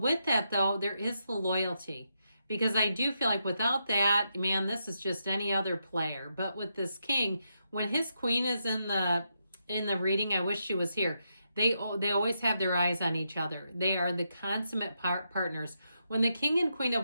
that though, there is the loyalty. Because I do feel like without that, man, this is just any other player. But with this king, when his queen is in the reading, I wish she was here. They always have their eyes on each other. They are the consummate partners. When the King and Queen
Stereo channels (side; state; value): both; inverted; correlation -0.83